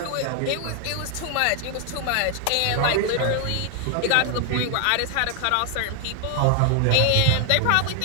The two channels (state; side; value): different; both; correlation 0.00